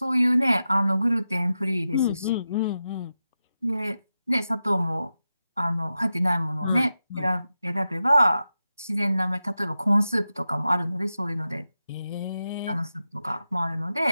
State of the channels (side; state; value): both; inverted; correlation -0.91